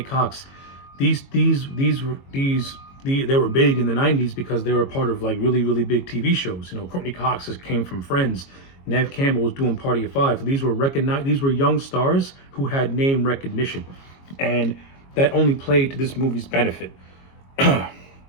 Cox, they were big in the 90s because they were part of like really, really big TV shows. Courtney Cox came from Friends. Neve Campbell was doing Party of Five. So these were young stars who had name recognition, and that only played to this movie's benefit.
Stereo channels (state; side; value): late; right; 22 ms